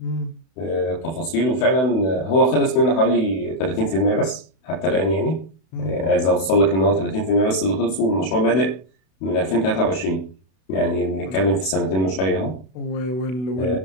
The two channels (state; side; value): late; right; 31 ms